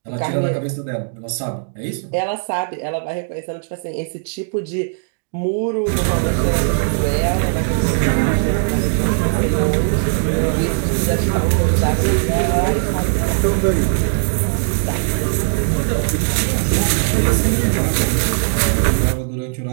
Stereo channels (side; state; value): left; silent; digital silence